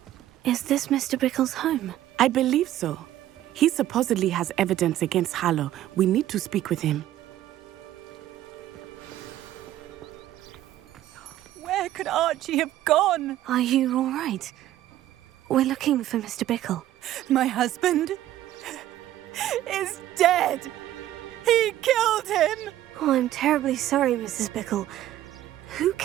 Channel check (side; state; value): left; quieter; 13.3 dB